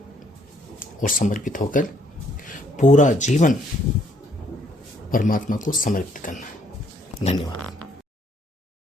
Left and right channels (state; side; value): normal; both; correlation 0.67